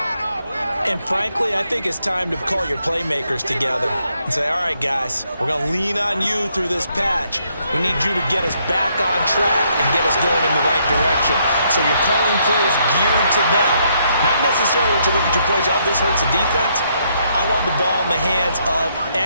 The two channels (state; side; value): inverted; both; correlation -0.73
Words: And frankly, I think it's time to call your playmakers together and say, all right, guys, we're going to lean on you through this patch. We need you to get us back on track and get us going in the right direction. So you're calling plays geared to them. Not necessarily that you look at your plays, oh, this hurts the defense. I want the ball in the hands of